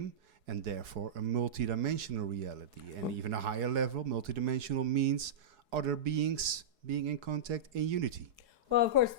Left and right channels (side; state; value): left; late; 4.7 ms